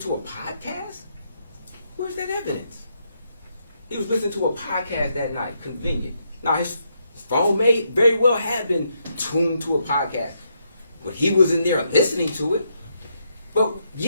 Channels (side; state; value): both; inverted; correlation -0.78